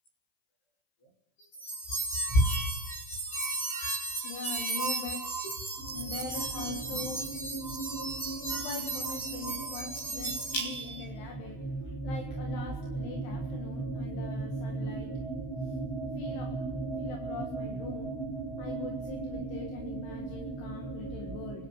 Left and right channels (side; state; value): right; late; 15 ms